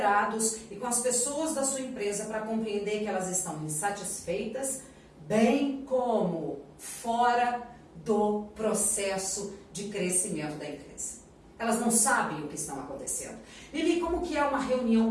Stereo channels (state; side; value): identical; both; correlation 1.00